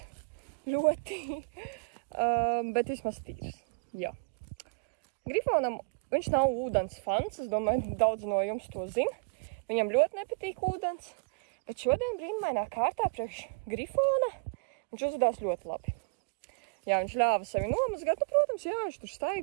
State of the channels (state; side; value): quieter; left; 34.6 dB